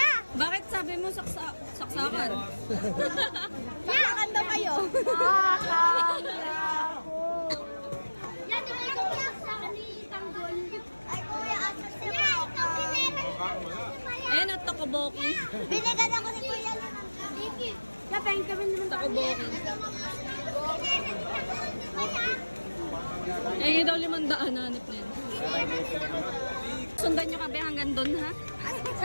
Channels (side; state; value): both; inverted; correlation -1.00